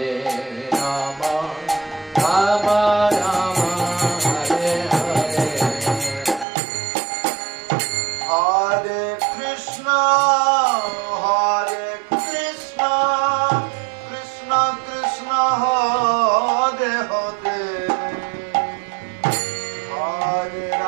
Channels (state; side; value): drops out; left; at 6.5 s